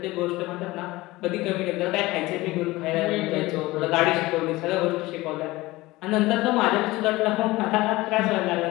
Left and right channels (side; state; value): right; quieter; 19.6 dB